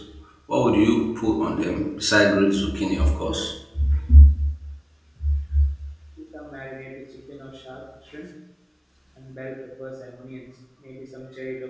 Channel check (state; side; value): identical; both; correlation 1.00